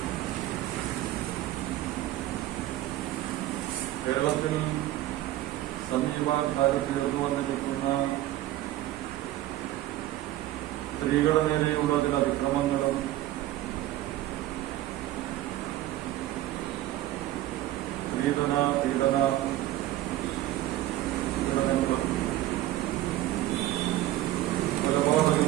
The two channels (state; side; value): quieter; left; 14.8 dB